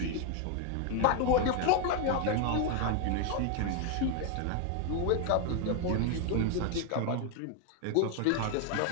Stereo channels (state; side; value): different; both; correlation 0.01